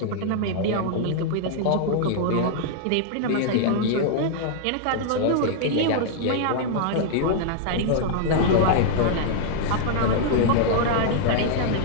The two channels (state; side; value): different; both; correlation -0.01